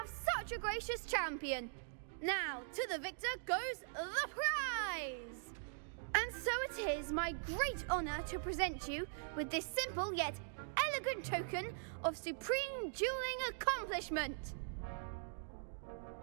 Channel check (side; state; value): left; silent; digital silence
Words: such a gracious champion. Now, to the victor goes the prize! And so it is my great honor to present you with this simple yet elegant token of supreme dueling accomplishment.